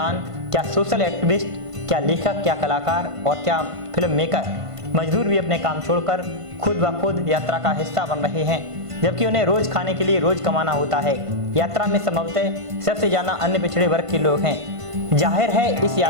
क्या सोशल एक्टिविस्ट, क्या लेखक, क्या कलाकार और क्या फिल्म मेकर। मजदूर भी अपने काम छोड़कर खुद ब खुद यात्रा का हिस्सा बन रहे हैं, जबकि उन्हें रोज खाने के लिए रोज कमाना होता है। यात्रा में संभवतः सबसे ज्यादा अन्य पिछड़े वर्ग के लोग हैं। जाहिर है इस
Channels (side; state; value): left; late; 1.5 ms